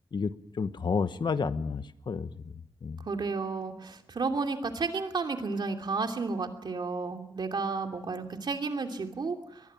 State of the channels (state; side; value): normal; both; correlation 0.64